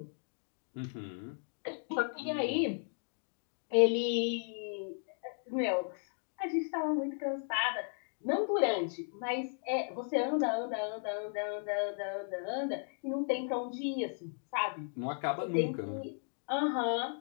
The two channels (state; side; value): silent; right; 54 dB below the other